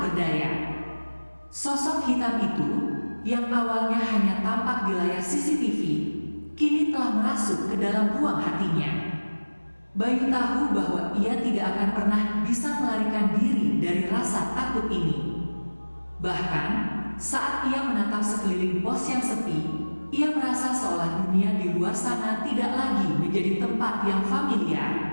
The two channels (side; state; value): both; inverted; correlation -1.00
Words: berdaya. Sosok hitam itu, yang awalnya hanya tampak di layar CCTV, kini telah merasuk ke dalam ruang hatinya. Bayu tahu bahwa ia tidak akan pernah bisa melarikan diri dari rasa takut ini. Bahkan, saat ia menatap sekeliling pos yang sepi, ia merasa seolah dunia di luar sana tidak lagi menjadi tempat yang